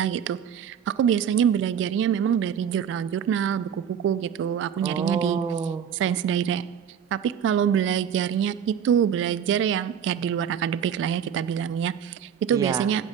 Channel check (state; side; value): quieter; left; 8.3 dB